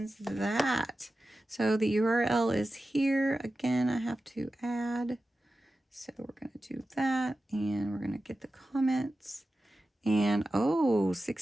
that. So the URL is here. Again, I have to add. So we're going to do that, and we're going to get the comments. And oh,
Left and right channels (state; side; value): normal; both; correlation 0.93